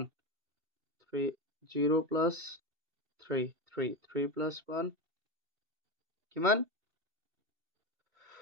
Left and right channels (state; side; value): late; left; 2.7 ms